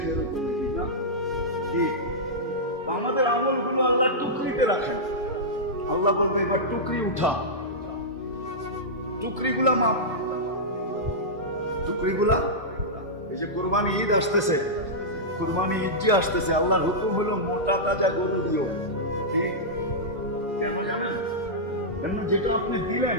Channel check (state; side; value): normal; both; correlation -0.11